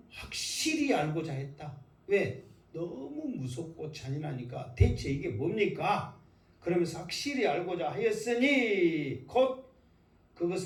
확실히 알고자 했다. 왜? 너무 무섭고 잔인하니까 대체 이게 뭡니까? 그러면서 확실히 알고자 하였으니 곧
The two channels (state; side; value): identical; both; correlation 1.00